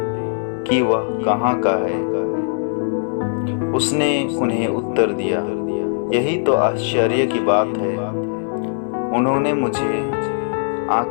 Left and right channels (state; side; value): silent; right; 66 dB below the other